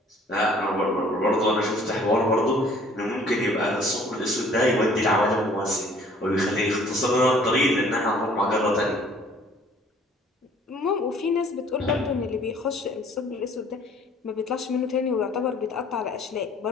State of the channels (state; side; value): normal; both; correlation 0.55